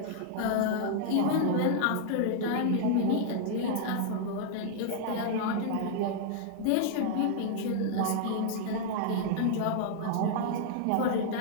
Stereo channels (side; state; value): both; different; correlation -0.01